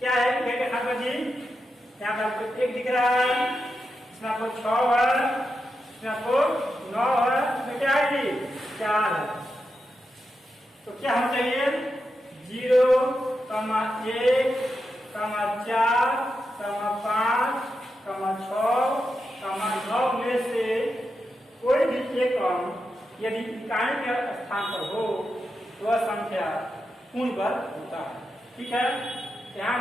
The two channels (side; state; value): both; normal; correlation 0.87